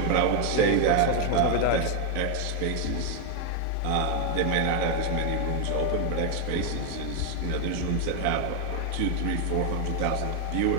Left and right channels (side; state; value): both; different; correlation 0.01